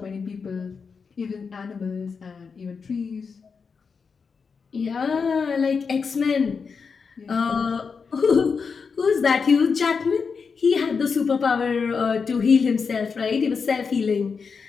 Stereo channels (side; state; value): right; quieter; 5.5 dB